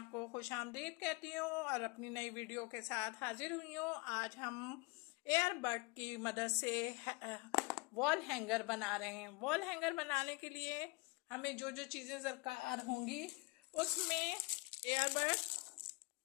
खुश आमदीद कहती हूँ और अपनी नई वीडियो के साथ हाजिर हुई हूँ। आज हम एयरबड की मदद से वॉल हैंगर बना रहे हैं। वॉल हैंगर बनाने के लिए हमें जो जो चीज़ें दरकार होंगी उसमें एयरबड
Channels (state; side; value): quieter; right; 26.8 dB